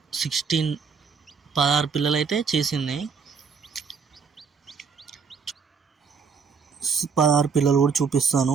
16 పిల్లలు అయితే చేసింది. 16 పిల్లలు కూడా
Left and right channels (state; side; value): quieter; left; 5.7 dB